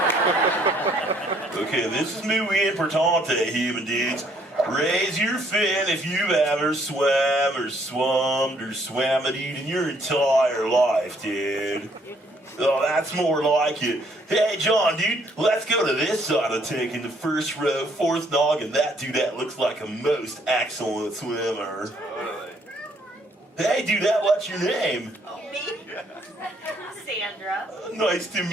Okay, this is muy importante, human dudes. Raise your fin if you've ever swam or swummed or swam it in your entire life, dude. Oh, that's more like it. Hey, John, dude, let's go to this side of the tank in the first row, fourth noggin. That dudette looks like a most excellent swimmer. Hey, dudette, what's your name? Me? Sandra. Nice to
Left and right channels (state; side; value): normal; both; correlation 0.66